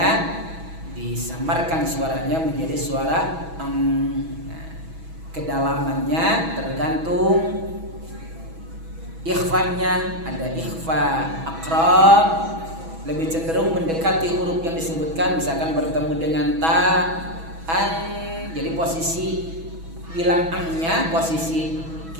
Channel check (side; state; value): left; late; 6.1 ms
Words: disamarkan suaranya menjadi suara kedalamannya tergantung ikhfanya. Ada ikhfa aqrab, lebih cenderung mendekati huruf yang disebutkan, misalkan bertemu dengan ta, an. Jadi posisi bilang an-nya, posisi